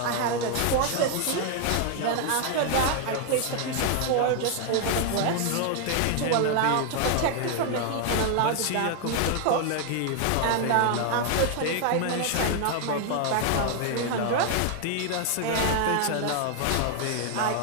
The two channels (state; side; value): different; both; correlation 0.00